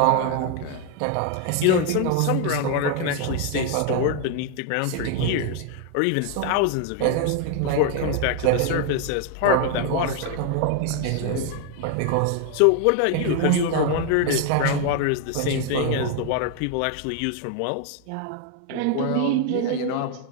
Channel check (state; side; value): different; both; correlation 0.00